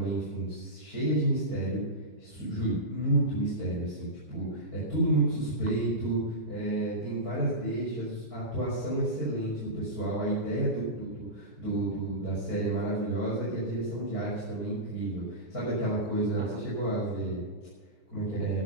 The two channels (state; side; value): late; right; 6.6 ms